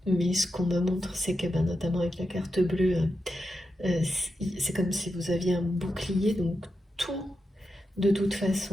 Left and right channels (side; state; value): both; normal; correlation 0.88